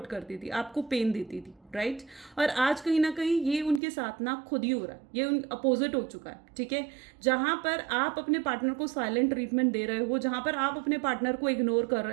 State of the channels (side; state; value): left; drops out; at 3.8 s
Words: करती थी, आपको पेन देती थी, राइट। और आज कहीं ना कहीं ये उनके साथ ना खुद ही हो रहा है, ये अपोजिट हो चुका है, ठीक है। जहाँ पर आप अपने पार्टनर को साइलेंट ट्रीटमेंट दे रहे हो, जहाँ पर आप अपने पार्टनर को इग्नोर कर